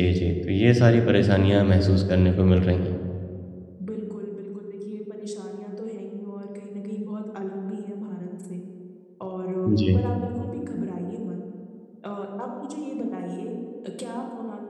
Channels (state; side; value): identical; both; correlation 1.00